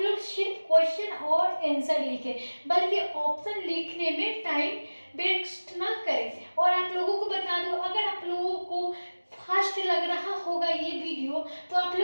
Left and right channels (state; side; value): inverted; both; correlation -1.00